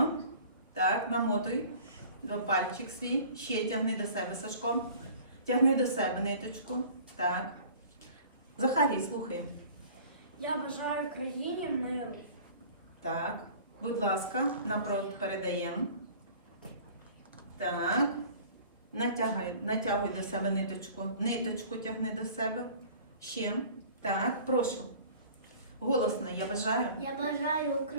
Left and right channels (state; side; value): inverted; both; correlation -0.46